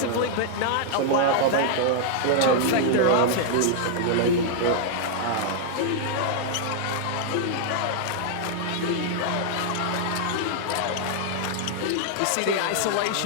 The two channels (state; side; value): different; both; correlation -0.01